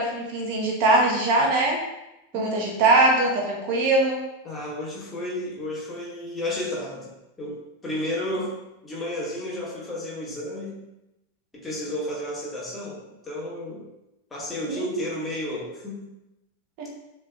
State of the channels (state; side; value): normal; both; correlation 0.09